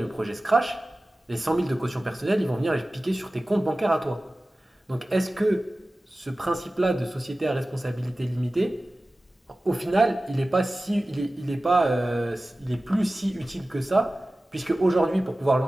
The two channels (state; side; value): normal; both; correlation 0.96